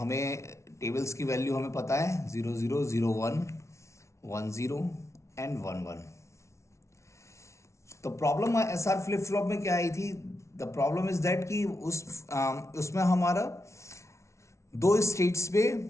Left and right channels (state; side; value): late; right; 0.14 ms